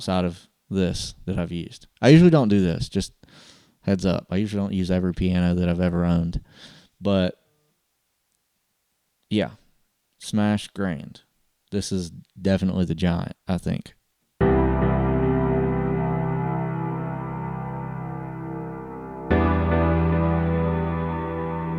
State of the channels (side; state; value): both; identical; correlation 1.00